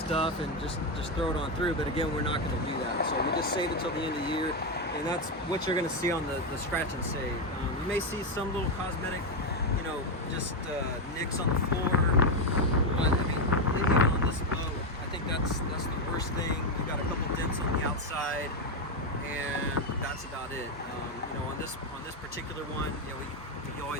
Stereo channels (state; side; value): normal; both; correlation 0.07